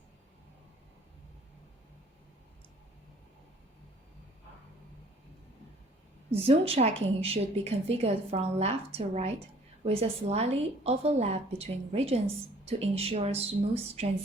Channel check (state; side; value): normal; both; correlation 0.56